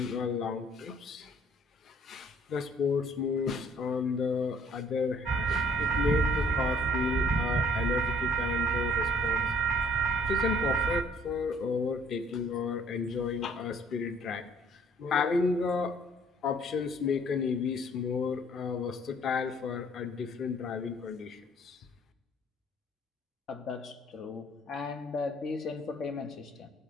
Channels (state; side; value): normal; both; correlation 0.59